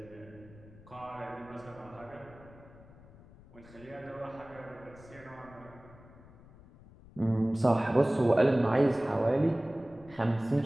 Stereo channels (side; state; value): left; noise; rumble, 22 dB below the sound